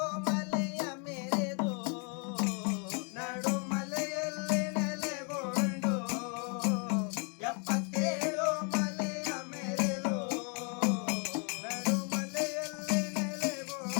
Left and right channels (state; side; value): quieter; right; 37.2 dB